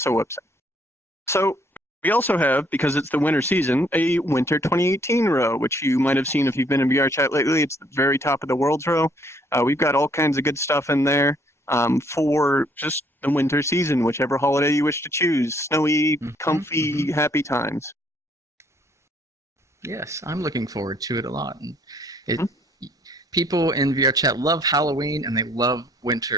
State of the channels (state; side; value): normal; both; correlation 0.65